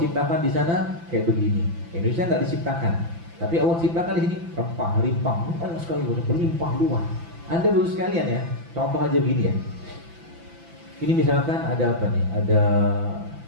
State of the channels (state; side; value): late; left; 5.9 ms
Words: di sana kayak begini. Indonesia nggak diciptakan, tapi Allah ciptakan di sini rempah, limpah, banyak sekali, berlimpah luas. Anda baru sekalian ya, contoh aja begini ya. Ini misalkan ada apa nih? Ada